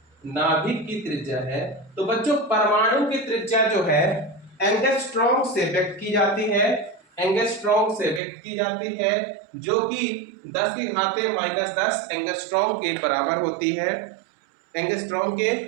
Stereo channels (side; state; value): left; drops out; at 8.2 s